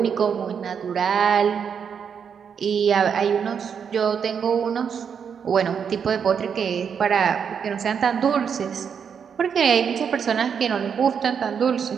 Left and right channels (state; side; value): quieter; left; 7.1 dB